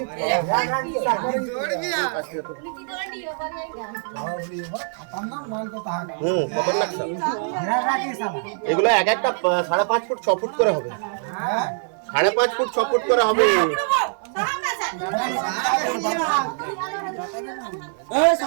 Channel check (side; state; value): left; silent; 59 dB below the other